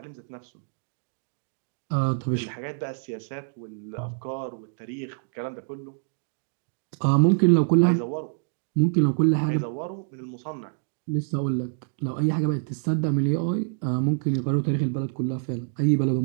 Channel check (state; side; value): silent; left; digital silence